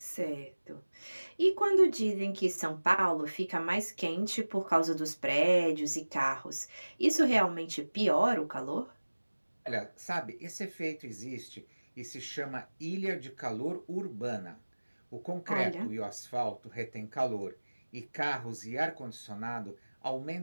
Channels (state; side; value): inverted; both; correlation -1.00